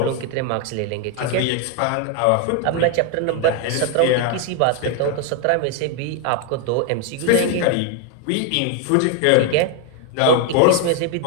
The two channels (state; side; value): different; both; correlation 0.00